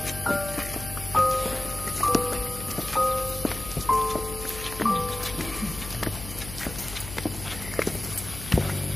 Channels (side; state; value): left; noise; hum, 11 dB below the sound